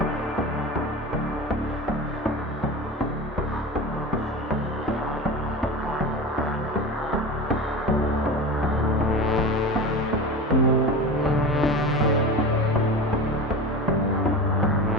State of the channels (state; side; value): normal; both; correlation 0.29